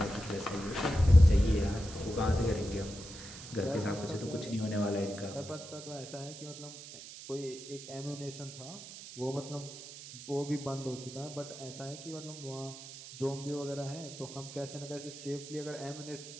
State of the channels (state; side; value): noise; right; hiss, 13 dB below the sound